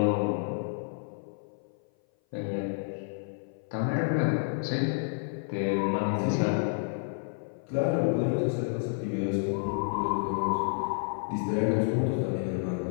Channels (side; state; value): right; silent; 56 dB below the other